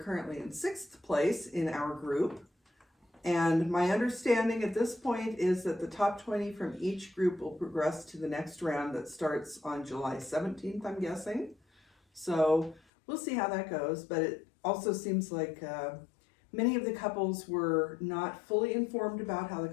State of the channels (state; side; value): drops out; right; at 12.8 s